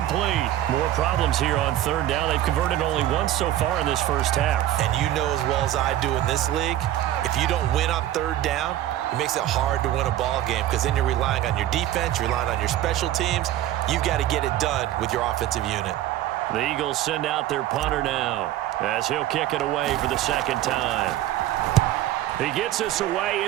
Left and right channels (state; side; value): quieter; left; 13.2 dB